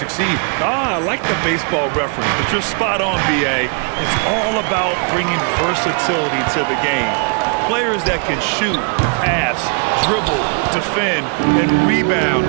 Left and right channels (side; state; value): left; quieter; 39.3 dB